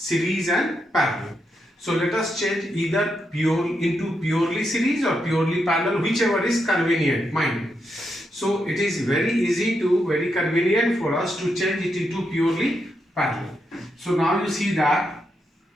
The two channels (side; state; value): both; normal; correlation 0.82